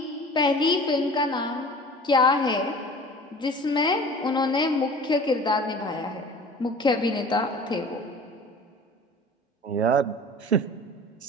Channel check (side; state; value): both; normal; correlation 0.42